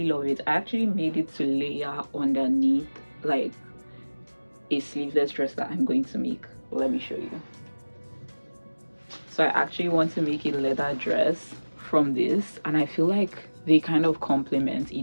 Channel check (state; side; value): inverted; both; correlation -1.00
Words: love it. I actually made it to layer underneath like a sleeveless dress that I'm going to make. Let me show you. So I actually want to make a leather dress from this, and I feel like they kind of complement